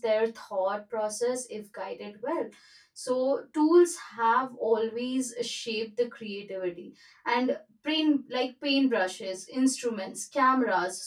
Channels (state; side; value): identical; both; correlation 1.00